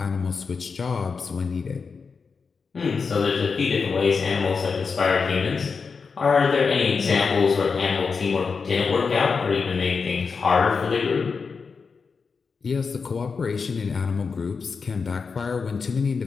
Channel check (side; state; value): right; quieter; 5.2 dB